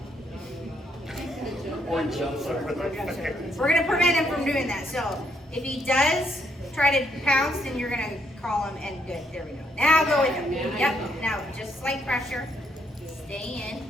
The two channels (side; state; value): both; normal; correlation 0.74